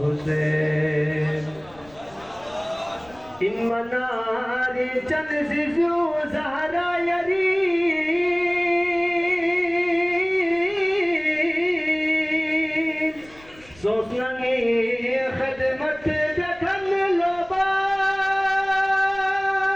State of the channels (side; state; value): left; noise; rumble, 25 dB below the sound